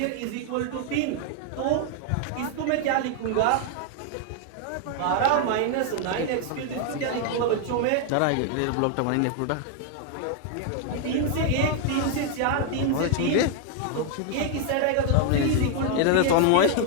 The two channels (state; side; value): different; both; correlation 0.00